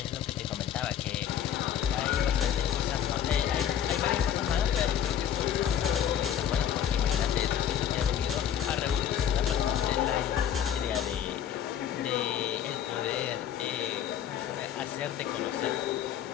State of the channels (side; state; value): right; quieter; 9.7 dB